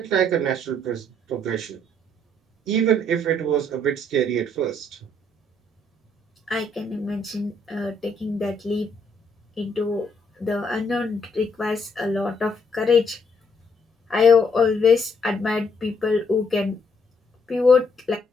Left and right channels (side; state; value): both; normal; correlation 0.69